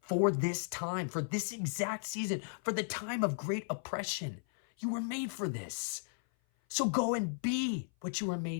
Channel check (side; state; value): right; silent; 54 dB below the other